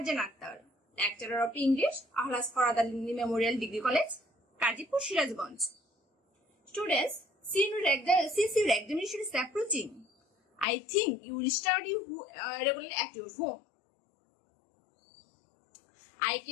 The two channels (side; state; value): right; drops out; at 10.7 s